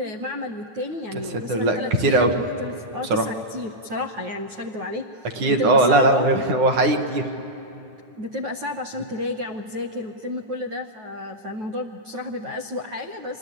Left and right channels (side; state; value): left; late; 9.4 ms